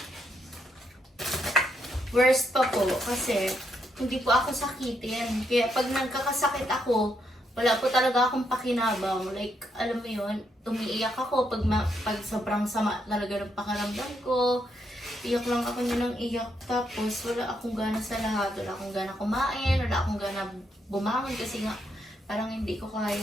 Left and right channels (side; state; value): both; normal; correlation 0.78